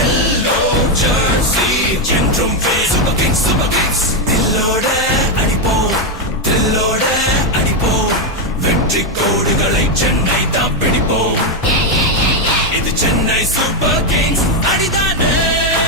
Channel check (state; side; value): normal; both; correlation 0.04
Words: jersey என்றும் சூப்பர் கிங்ஸ். தில்லோட அடிப்போம், தில்லோட அடிப்போம், வெற்றி கோடுகளை சென்னை தான் பிடிப்போம். இது சென்னை சூப்பர் கிங்ஸ் அடிதானே,